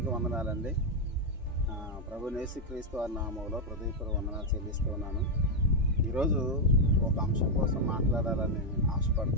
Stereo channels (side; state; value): both; normal; correlation 0.01